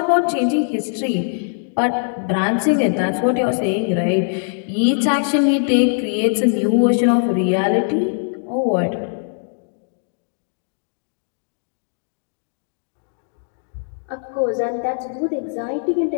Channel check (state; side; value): silent; right; digital silence